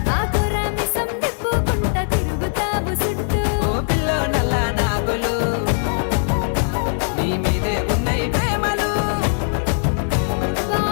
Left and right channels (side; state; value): right; silent; digital silence